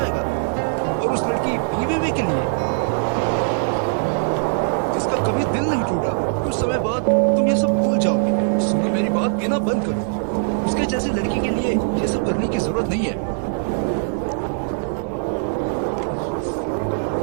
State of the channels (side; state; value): left; silent; 65 dB below the other